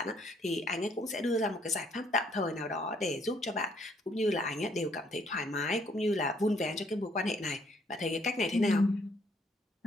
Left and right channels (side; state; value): both; normal; correlation 0.67